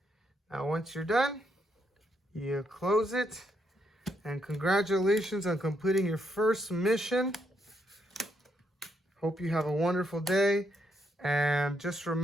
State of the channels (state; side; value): normal; both; correlation 0.77